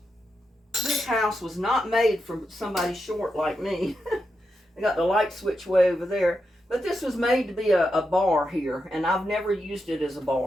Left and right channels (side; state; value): both; normal; correlation 0.86